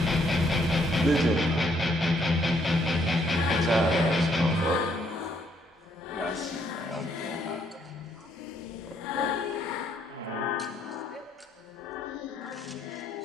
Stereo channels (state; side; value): normal; both; correlation 0.70